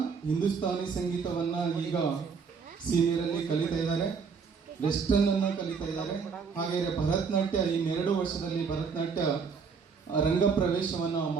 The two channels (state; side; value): quieter; left; 5.7 dB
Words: ಹಿಂದೂಸ್ತಾನಿ ಸಂಗೀತವನ್ನು ಈಗ ಸೀನಿಯರಲ್ಲಿ ಕಲಿತಾ ಇದ್ದಾರೆ, ವೆಸ್ಟರ್ನನ್ನು ಕಲಿತಾ ಇದ್ದಾರೆ. ಹಾಗೆಯೇ ಭರತನಾಟ್ಯ ಈ 2 ವರ್ಷದಲ್ಲಿ ಭರತನಾಟ್ಯ ರಂಗ ಪ್ರವೇಶವನ್ನು